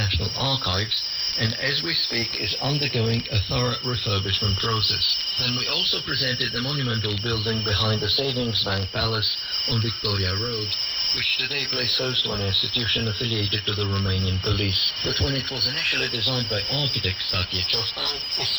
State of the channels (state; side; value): identical; both; correlation 1.00